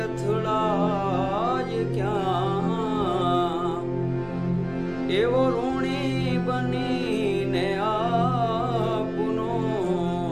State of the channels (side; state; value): both; identical; correlation 1.00